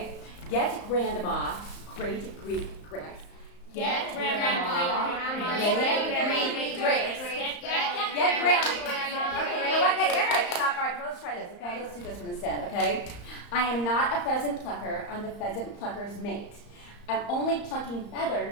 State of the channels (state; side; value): late; right; 34 ms